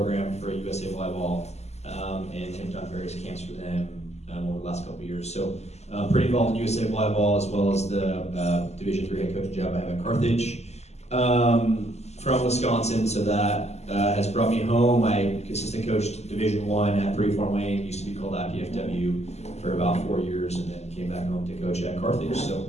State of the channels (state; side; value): late; right; 0.32 ms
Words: for USA Volleyball, and have done various camps for them over the last couple of years. So pretty involved in USA Volleyball, as well as the Division III head coaching job I have at Carthage. From Wisconsin, so that has brought me home. I assistant coached Division I at 3 Fort Wayne, used to be called IPFW, for about 4 years, and then came back home to coach at Carthage. So